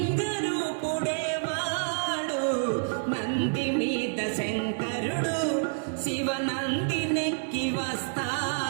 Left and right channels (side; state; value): left; silent; 59 dB below the other